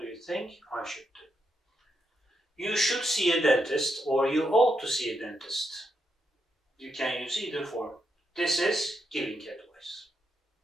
you think I should do? You should see a dentist or you ought to see a dentist. You can use either form. This is giving advice.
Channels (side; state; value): both; normal; correlation 0.81